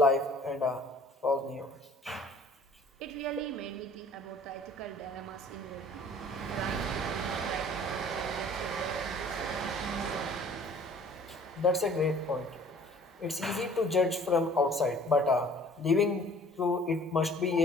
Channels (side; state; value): both; normal; correlation 0.52